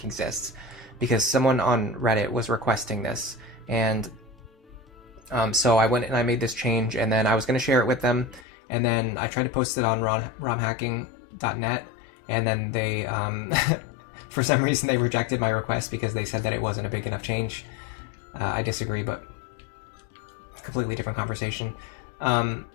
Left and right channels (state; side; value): drops out; right; at 8.5 s